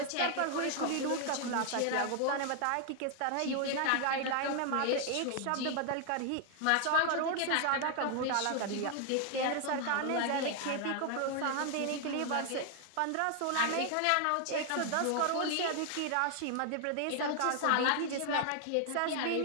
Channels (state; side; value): different; both; correlation 0.00